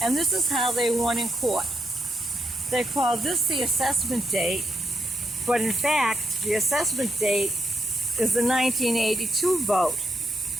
And this is how they won in court. They called this the assessment date, but in fact, the assessment date is the 1982 vote.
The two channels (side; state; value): both; normal; correlation 0.80